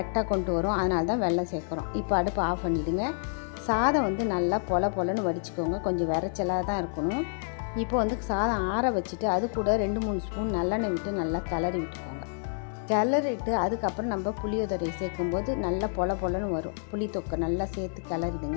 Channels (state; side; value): silent; right; 59 dB below the other